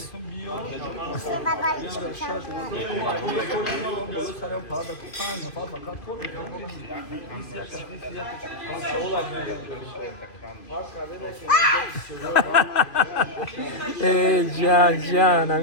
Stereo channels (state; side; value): late; right; 2.5 ms